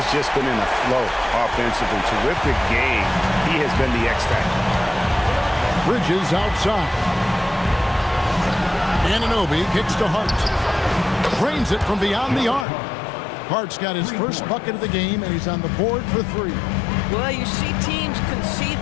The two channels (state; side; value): drops out; right; at 12.7 s